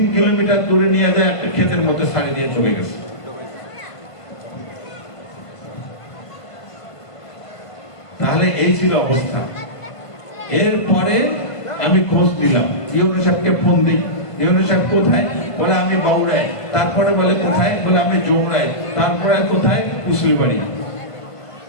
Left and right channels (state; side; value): late; right; 1.5 ms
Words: কিলোমিটার দূরে নিয়ে যায়, একটা ক্ষেতের মধ্যে ছাড়ি দিয়ে চলে গেছে। তাহলে এই ছিল অবস্থা। এরপরে আমি খোঁজ দিলাম, ইউনো সাহেবকে ফোন দিই, ইউনো সাহেব কোথায়? বলে আমি বাউড়ায়। তারপরে বলে কোথায়? বলে আমি জোমরায়। তারপরে কোথায়? কুসলিবাড়ি।